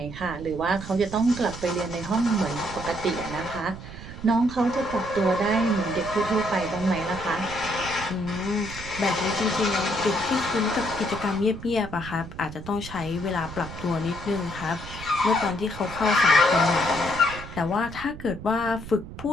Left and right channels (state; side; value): noise; right; rumble, 12 dB below the sound